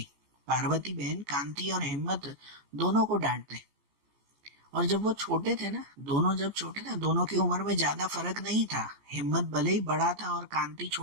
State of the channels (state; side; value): late; left; 14 ms